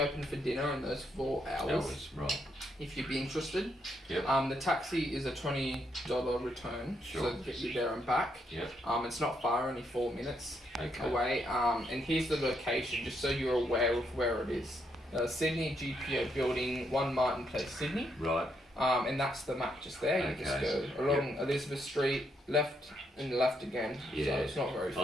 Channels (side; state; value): both; normal; correlation 0.77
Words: for dinner in those 4 hours. Right. If you'd be interested. Yep. The taxi is a $20 return, Sure. so to get you there and back. Yep. It's not far, only 4 minutes Okay. away. And here's the location, just so you're aware of where it is. Sydney GPO Building, 1 Martin Place, Sydney. Right. And that's the map just there. You just Okay. go along Elizabeth Street, left and left again. Yeah. So it's not very